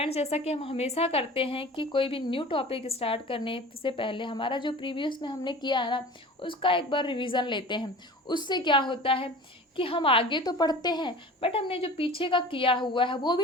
जैसा कि हम हमेशा करते हैं कि कोई भी न्यू टॉपिक स्टार्ट करने से पहले हमारा जो प्रीवियस में हमने किया है ना, उसका एक बार रिवीजन लेते हैं। उससे क्या होता है कि हम आगे तो पढ़ते हैं, बट हमने जो पीछे का किया हुआ है वो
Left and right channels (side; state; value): both; normal; correlation 0.39